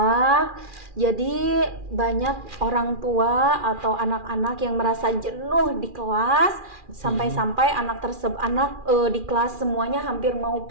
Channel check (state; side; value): late; left; 2.4 ms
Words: Jadi banyak orang tua atau anak-anak yang merasa jenuh di kelas sampai-sampai anak di kelas semuanya hampir mau